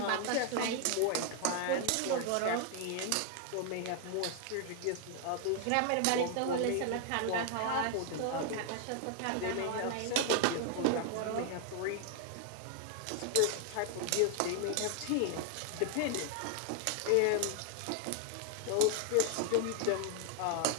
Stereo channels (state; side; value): different; both; correlation 0.00